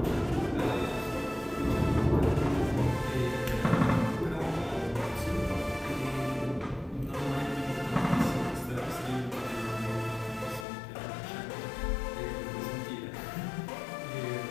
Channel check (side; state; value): right; drops out; at 10.7 s